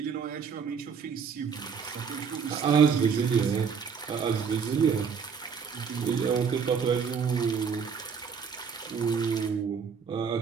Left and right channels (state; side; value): quieter; left; 6.4 dB